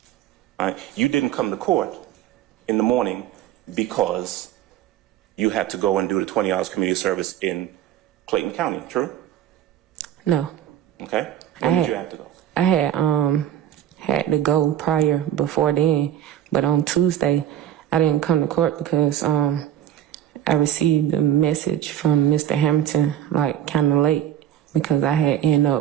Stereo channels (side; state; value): left; quieter; 11.1 dB